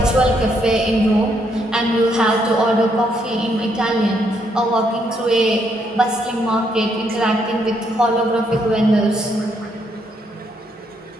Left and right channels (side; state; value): both; normal; correlation 0.74